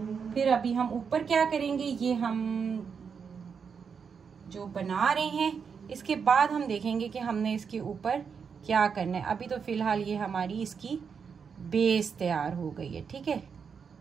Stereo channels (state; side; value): quieter; left; 6.3 dB